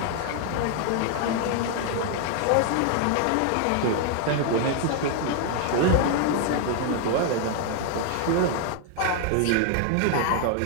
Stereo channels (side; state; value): both; different; correlation 0.00